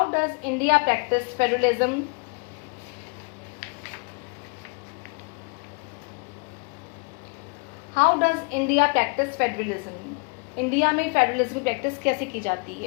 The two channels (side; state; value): right; quieter; 31.7 dB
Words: does India practice federalism. How does India practice federalism. India में फेडरलिज्म की प्रैक्टिस कैसे की जाती